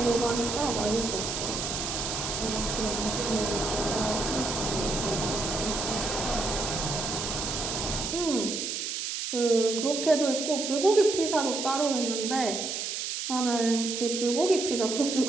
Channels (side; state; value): right; noise; hiss, 3 dB below the sound